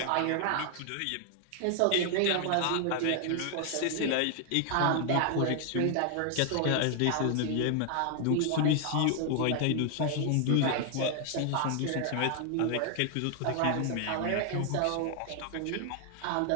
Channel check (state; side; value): different; both; correlation 0.00